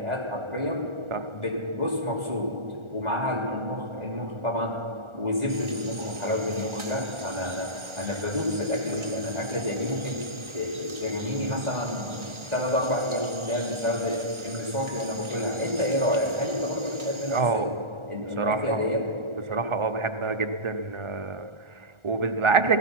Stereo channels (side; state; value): left; late; 1.4 ms